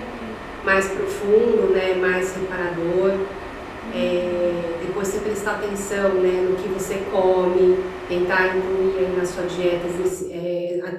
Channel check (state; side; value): identical; both; correlation 1.00